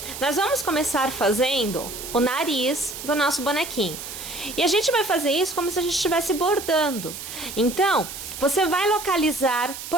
nós vamos começar fazendo o nariz do nosso bonequinho. E a gente vai fazer isso como se a gente estivesse bordando. Então, você vai localizar,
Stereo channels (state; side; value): noise; right; hiss, 10 dB below the sound